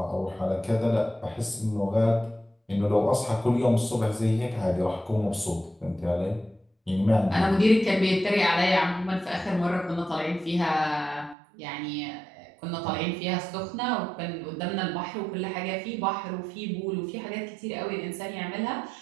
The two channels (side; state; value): left; drops out; at 11.4 s